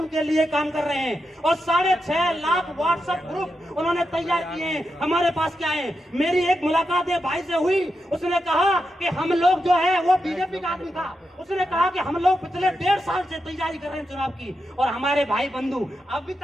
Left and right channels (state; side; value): normal; both; correlation 0.87